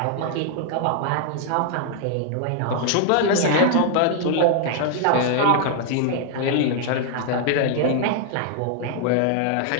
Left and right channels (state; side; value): different; both; correlation 0.00